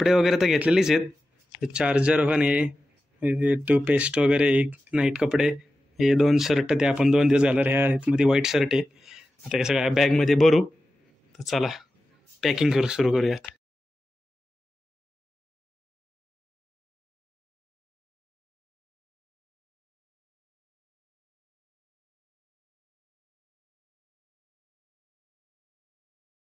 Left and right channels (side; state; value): both; normal; correlation 0.93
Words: वगैरे तर घेतलेलीच आहेत. चार्जर पण हे टूथपेस्ट वगैरे, एक नाईट कपडे, हे 2 शर्ट ते आपण 2 दिवस घालणार. ह्यामध्ये व्हाईट शर्ट आहे. आता हे सगळ्या बॅगमध्ये भरू. तर चला पॅकिंग सुरू करूयात.